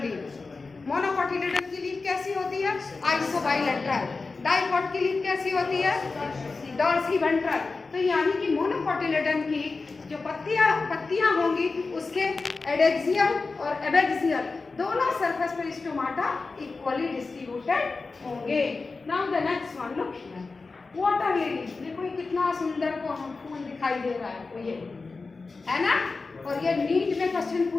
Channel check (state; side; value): quieter; right; 4.0 dB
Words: लीफ। मोनोकोटिलेडन की लीफ कैसी होती है? आइसोबाइलेटरल। डाइकोट की लीफ कैसी होती है? Dorsiventral. तो यानी कि मोनोकोटिलेडन की जो पत्तियां होंगी उसके एडेक्सियल और एबेक्सियल दोनों सरफेस पर स्टोमाटा इक्वली डिस्ट्रीब्यूटेड होंगे। Now the next one, look here, water lily. देखो ये कितना सुंदर को फूल दिखाई दे रहा है, तो ये है ना, और ये नीट में क्वेश्चन